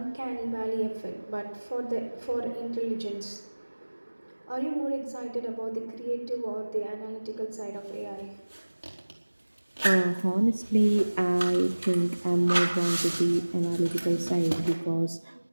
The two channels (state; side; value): inverted; both; correlation -1.00